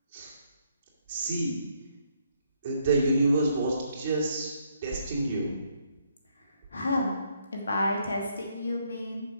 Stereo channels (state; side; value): inverted; both; correlation -0.72